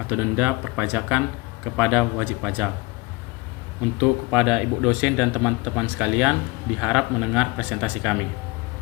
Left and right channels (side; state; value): right; quieter; 23.8 dB